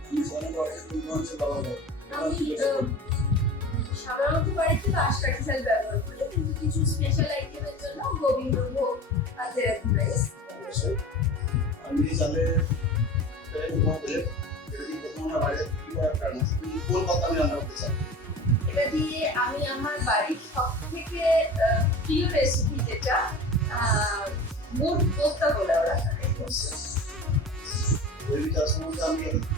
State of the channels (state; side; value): normal; both; correlation 0.35